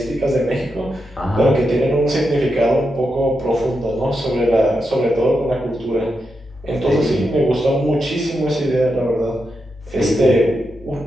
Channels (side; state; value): both; normal; correlation 0.86